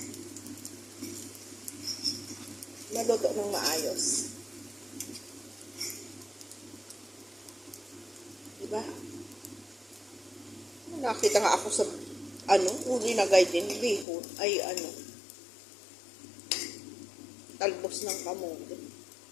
Maluto ng maayos. Diba? Nakita nga ako sa uli na guide din, bihon, ay talbos ng kamote.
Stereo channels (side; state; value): right; drops out; at 14.1 s